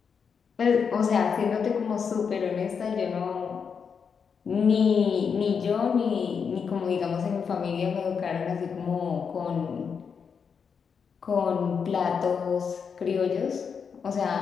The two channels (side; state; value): right; quieter; 6.3 dB